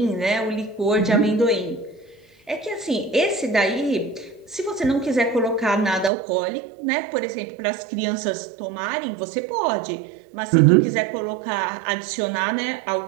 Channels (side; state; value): left; drops out; at 6.1 s